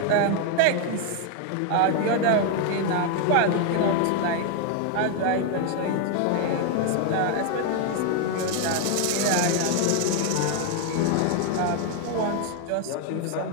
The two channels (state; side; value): different; both; correlation 0.00